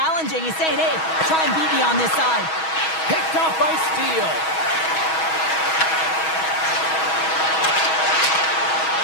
He's saying, hey, try and beat me on this side. Picked off by Steele.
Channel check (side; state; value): right; late; 6.2 ms